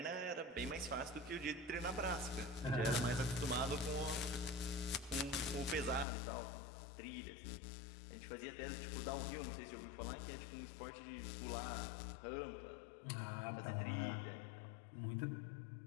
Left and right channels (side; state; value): right; drops out; at 6.1 s